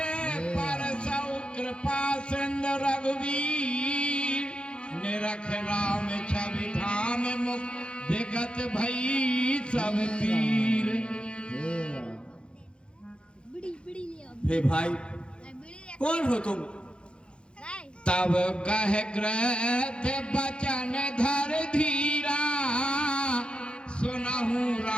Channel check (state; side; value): late; right; 0.055 ms